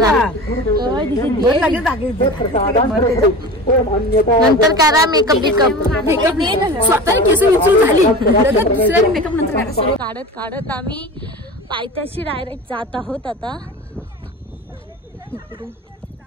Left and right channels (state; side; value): normal; both; correlation 0.33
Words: नंतर करा मेकअप स्वतः केस झाली मेकअप नंतर काढत आम्ही पायथ्याशी डायरेक्ट जात आहोत. आता